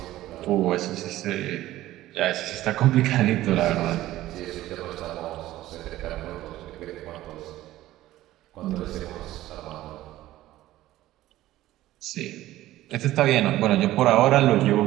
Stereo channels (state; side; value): quieter; left; 15.3 dB